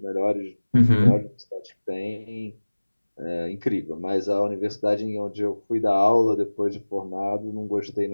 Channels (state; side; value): inverted; both; correlation -1.00